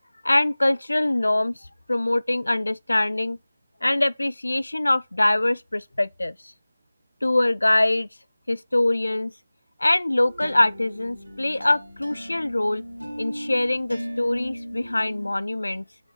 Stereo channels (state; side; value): inverted; both; correlation -1.00